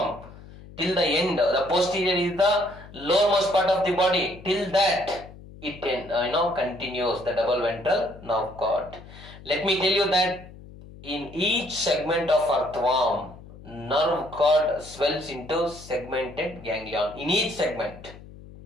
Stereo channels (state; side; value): noise; left; hum, 18 dB below the sound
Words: till the end, the posterior is the lowermost part of the body. Till that, it continues the double ventral nerve cord. Let me tell you that in each segment of earthworm, nerve cord swells into segmented ganglion. In each segment